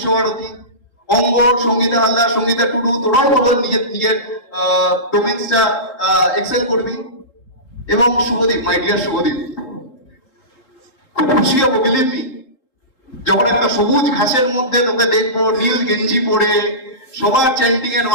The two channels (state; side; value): late; right; 3.8 ms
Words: অঙ্গর, সঙ্গীতা হালদার, সঙ্গীতা টুডু, তোরাও বলো নিজের ডোমেন্সটা এক্সেল করবি। এবং শুভদীপ, মাই ডিয়ার শুভদীপ, খুব খুশি হবো, বিলিভ মি, যখন একটা সবুজ ঘাসের মধ্যে তোকে দেখবো নীল গেঞ্জি পরে, সবার চ্যান্টিং এর